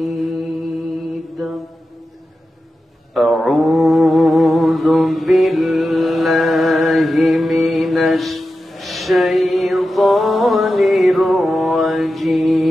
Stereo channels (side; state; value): both; normal; correlation 0.92